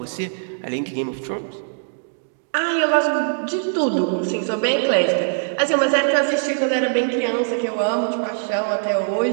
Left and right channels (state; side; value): silent; left; digital silence